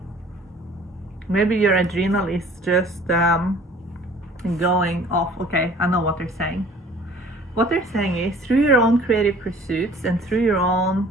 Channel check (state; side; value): normal; both; correlation 0.51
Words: Maybe your adrenal is just going off. Okay, I know what they're saying. What they're saying is, through your own creative pursuits and through your own